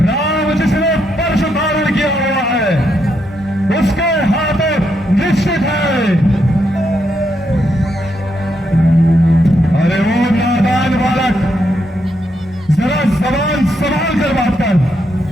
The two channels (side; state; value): both; normal; correlation 0.79